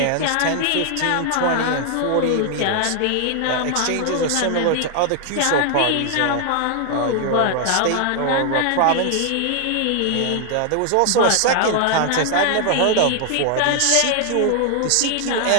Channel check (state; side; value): different; both; correlation 0.00